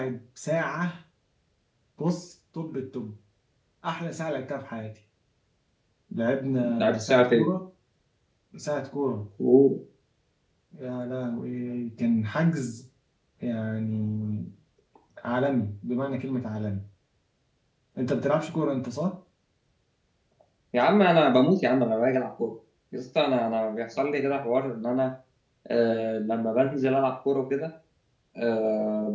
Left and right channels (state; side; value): identical; both; correlation 1.00